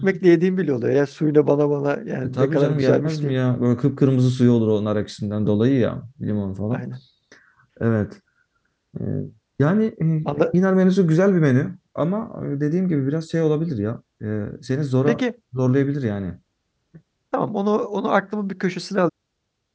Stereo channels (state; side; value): identical; both; correlation 1.00